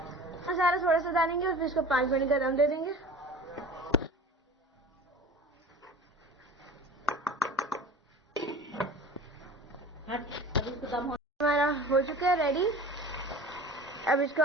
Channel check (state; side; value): normal; both; correlation 0.39